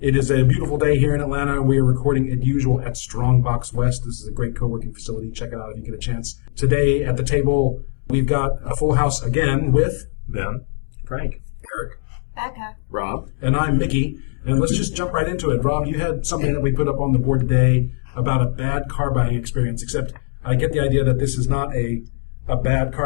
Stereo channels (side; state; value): right; silent; digital silence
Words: It is a beautiful day here in Atlanta. We are recording as usual at Strongbox West. This is a great co-working facility. Check it out if you get a chance. Today at the table, we've got a full house again with Ben, Frank, Eric, Beka, Rob, and I'm Mickey. And let's just jump right into it. Rob, you had something that we put up on the board today about a bad car buying experience, except I get the idea that this is not a bad